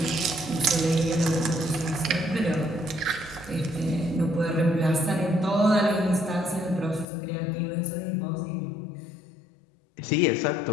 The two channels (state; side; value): drops out; right; at 7.1 s